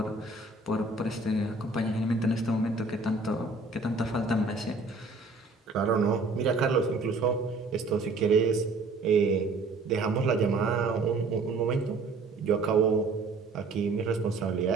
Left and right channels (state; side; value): quieter; left; 3.6 dB